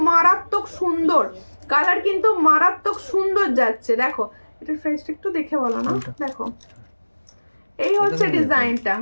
মারাত্মক সুন্দর, কালার কিন্তু মারাত্মক সুন্দর যাচ্ছে। দেখো এটার প্রাইসটা একটু দেখে বলো না। দেখো এই হচ্ছে ডিজাইনটা,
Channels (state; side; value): inverted; both; correlation -1.00